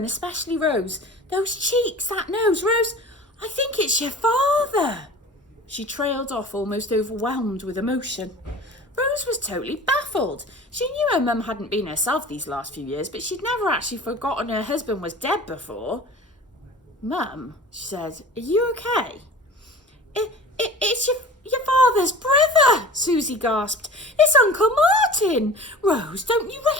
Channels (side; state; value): both; normal; correlation 0.40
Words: especially Rose. Those cheeks, that nose. Rose, I think it's your father. She trailed off, almost overwhelmed with emotion. Rose was totally baffled. She knew her mum hadn't been herself these last few years, but she'd never actually forgotten her husband was dead before. Mum, she said, are you okay? It's your father's brother, Susie gasped. It's Uncle Martin. Rose, don't you